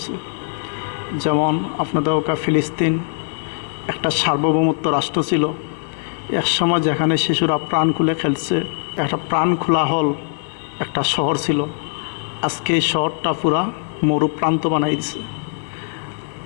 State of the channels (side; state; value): right; silent; digital silence